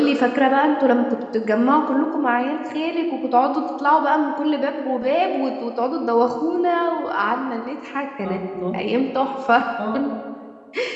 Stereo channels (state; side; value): identical; both; correlation 1.00